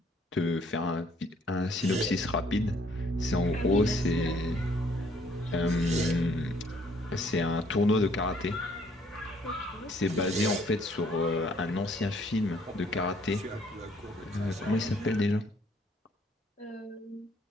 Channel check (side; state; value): both; normal; correlation 0.63